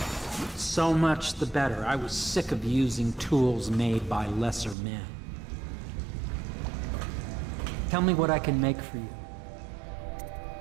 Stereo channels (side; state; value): left; drops out; at 4.8 s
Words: so much the better. I was sick of using tools made by lesser men. Tell me what I can make for you.